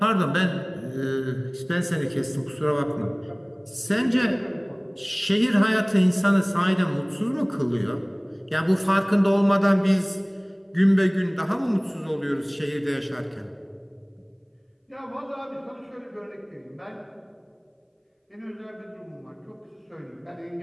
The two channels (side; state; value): both; identical; correlation 1.00